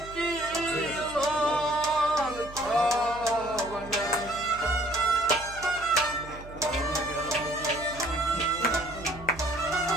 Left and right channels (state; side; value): noise; right; hum, 16 dB below the sound